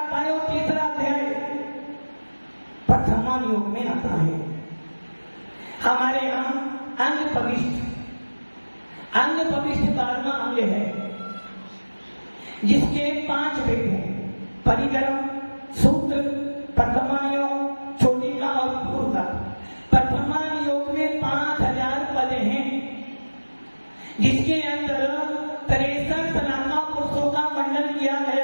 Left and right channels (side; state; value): both; inverted; correlation -1.00